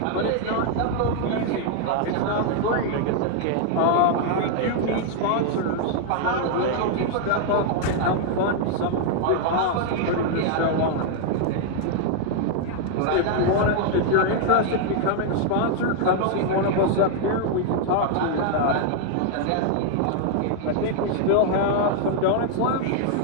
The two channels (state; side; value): different; both; correlation 0.00